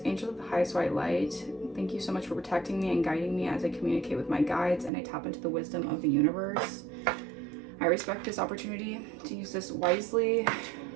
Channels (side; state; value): left; drops out; at 4.9 s